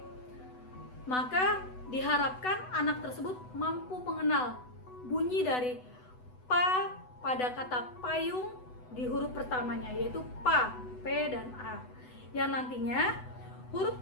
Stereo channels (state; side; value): late; right; 8.0 ms